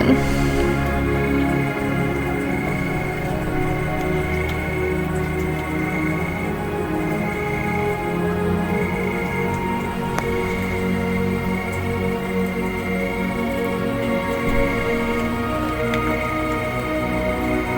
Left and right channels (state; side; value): identical; both; correlation 1.00